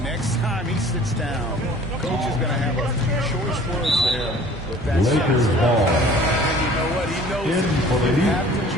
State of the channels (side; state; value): both; normal; correlation 0.49